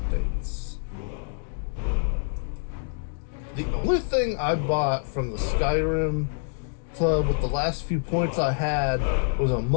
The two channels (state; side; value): silent; right; digital silence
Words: The only thing I bought from the Skyrim club with the last few points I had was a